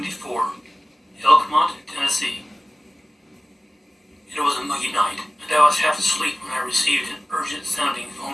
Elkmont, Tennessee. It was a muggy night, and I was half asleep when I received an urgent-sounding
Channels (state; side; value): normal; both; correlation 0.97